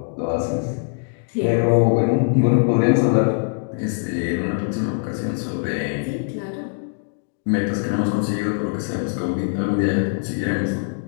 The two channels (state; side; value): silent; right; 59 dB below the other